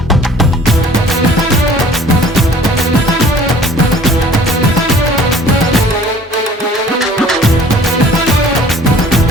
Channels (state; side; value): normal; both; correlation 0.51